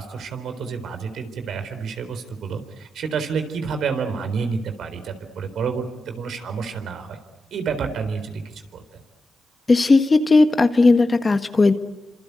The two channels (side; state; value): both; normal; correlation 0.90